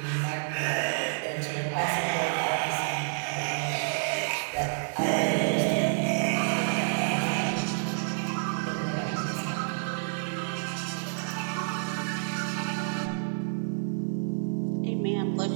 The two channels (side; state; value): left; silent; digital silence